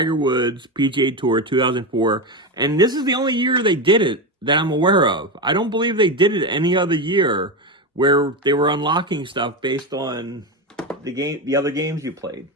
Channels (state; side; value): normal; both; correlation 0.16